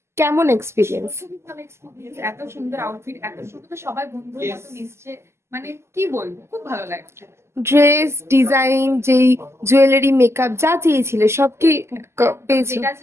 কেমন এক্সপিরিয়েন্স? খুবই ভালো এক্সপিরিয়েন্স। এত সুন্দর আউটফিট, এত সুন্দর, সবাই বন্ধুর মতো মিশছে, মানে কি বলবো, খুব ভালো লাগছে। ড্রেস ডিজাইন, যেই জুয়েলারি মেকআপ যা চেয়েছিলে সব কি পেয়েছো? যেটা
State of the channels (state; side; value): late; left; 0.13 ms